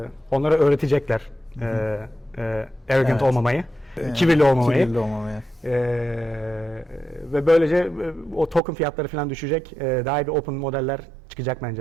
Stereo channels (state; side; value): drops out; left; at 8.6 s